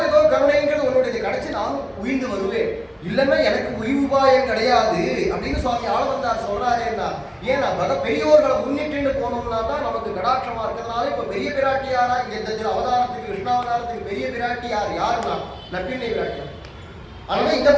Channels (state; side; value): identical; both; correlation 1.00